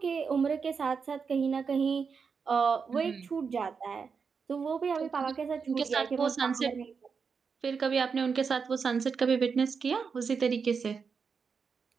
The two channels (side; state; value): left; quieter; 5.7 dB